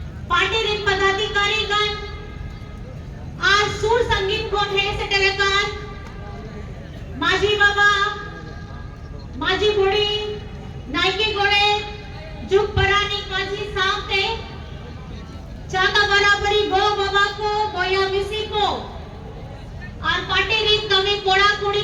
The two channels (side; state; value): both; identical; correlation 1.00